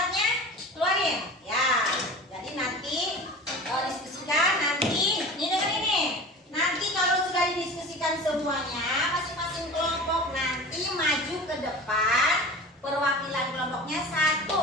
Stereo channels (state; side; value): normal; both; correlation 0.36